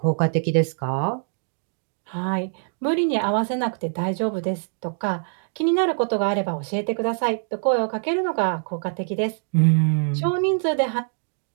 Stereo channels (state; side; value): silent; left; digital silence